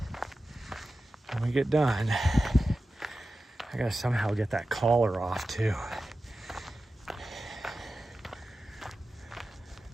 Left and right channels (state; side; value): normal; both; correlation 0.93